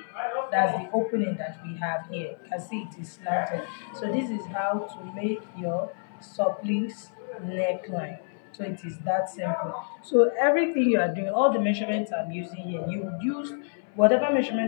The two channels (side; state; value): right; silent; 58 dB below the other